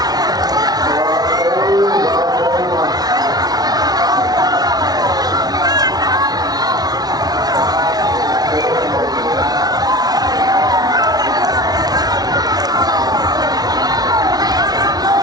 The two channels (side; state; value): left; late; 0.19 ms